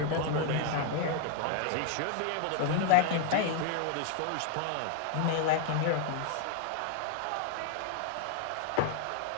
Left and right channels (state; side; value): different; both; correlation 0.00